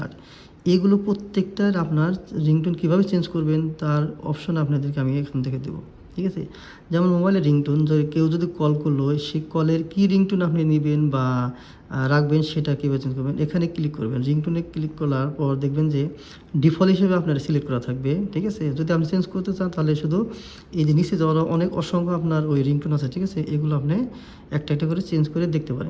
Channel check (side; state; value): both; identical; correlation 1.00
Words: এগুলো প্রত্যেকটার আপনার রিংটোন কীভাবে চেঞ্জ করবেন তার অপশন আপনাদেরকে আমি এখান থেকে দেবো। ঠিক আছে, যেমন মোবাইলের রিংটোন, কেউ যদি কল করলো, সেই কলের কী রিংটোন আপনি নেবেন বা রাখবেন সেটা কীভাবে চেঞ্জ করবেন, এখানে ক্লিক করবেন। রিংটোনে ক্লিক করার পর দেখবেন যে ডিফল্ট হিসেবে আপনার সিলেক্ট করা থাকবে। ঠিক আছে, যদি আপনি চেঞ্জ করতে চান তাহলে শুধু এই যে নিচে যাওয়ার অনেক অসংখ্য আপনার ওই রিংটোন আছে, ঠিক আছে, এগুলো আপনি একটা একটা করে চেঞ্জ করে দেখতে